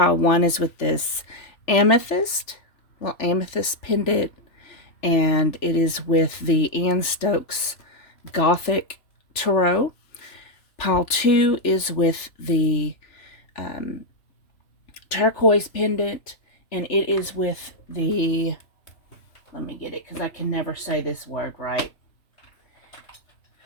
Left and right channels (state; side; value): late; right; 3.4 ms